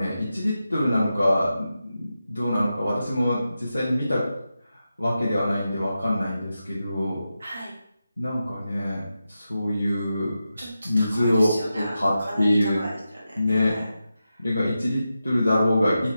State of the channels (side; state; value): both; inverted; correlation -0.90